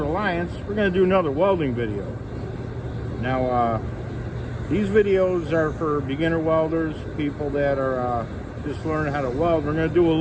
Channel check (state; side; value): identical; both; correlation 1.00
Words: We're going to do another welding video. Now, these videos are for beginner welders, people that are just learning how to weld. We're going to do a